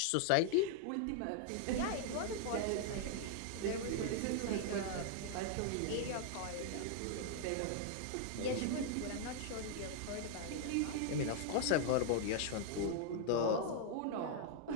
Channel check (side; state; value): both; different; correlation 0.00